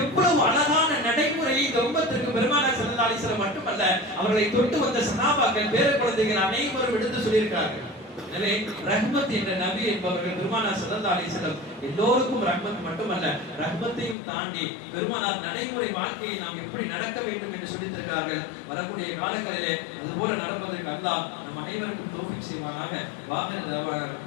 அழகான நடைமுறை இந்த உம்மத்திற்கு பெருமானார் ஸல்லல்லாஹு அலைஹி வஸல்லம் மட்டுமல்ல, அவர்களை தொட்டு வந்த சஹாபாக்கள் பேர குழந்தைகள் அனைவரும் எடுத்து சொல்லியிருக்கிறார்கள். எனவே ரஹ்மத் என்ற நபி என்பவர்கள் பெருமானார் ஸல்லல்லாஹு அலைஹி வஸல்லம் எல்லோருக்கும் ரஹ்மத் மட்டுமல்ல, ரஹ்மத்தையும் தாண்டி பெருமானார் நடைமுறை வாழ்க்கையை நாம் எப்படி நடக்க வேண்டும் என்று சொல்லித் தருகிறார்கள். வரக்கூடிய காலங்களிலே அதுபோல நடப்பதற்கு அல்லாஹ் நம் அனைவருக்கும் தௌஃபீக் செய்வானாக. வாஹிர் தஅவானா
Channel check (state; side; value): drops out; right; at 14.2 s